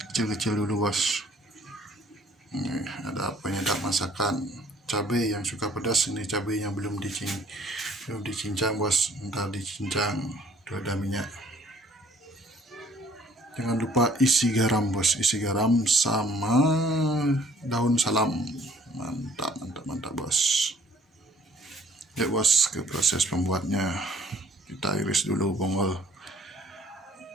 dulu, bos. Ini ada penyedap masakan, cabai yang suka pedas. Ini cabainya belum dicincang, bos, ntar dicincang. Itu ada minyak. Jangan lupa isi garam, bos, isi garam sama daun salam. Mantap, bos. Yuk, bos, ke proses pembuatnya. Kita iris dulu bongol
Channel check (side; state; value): both; normal; correlation 0.58